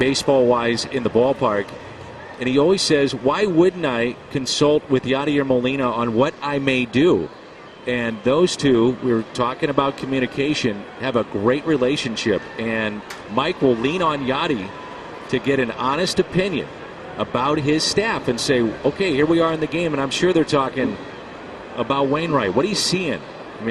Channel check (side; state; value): both; identical; correlation 1.00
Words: in the ballpark. And he always says, why wouldn't I consult with Yadier Molina on what I may do? And those two, we were talking about communication, have a great relationship. And Mike will lean on Yadi to get an honest opinion about his staff and say, okay, here we are in the game. And I'm sure they're talking about Wainwright. What he's seeing. I